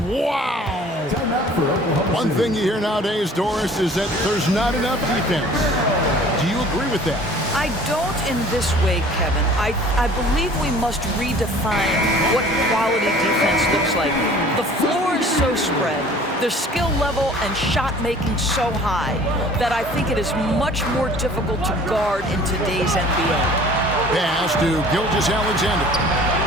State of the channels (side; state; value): both; normal; correlation 0.49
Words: Wow. One thing you hear nowadays, Doris, is that there's not enough defense. Do you agree with that? I don't in this way, Kevin. I believe we must redefine what quality defense looks like. The floor is so spread, their skill level and shot making so high that I think it is much more difficult to guard in today's NBA. Pass to Gilgeous-Alexander.